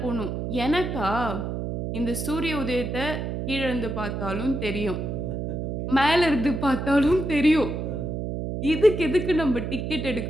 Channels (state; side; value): noise; right; hum, 3 dB below the sound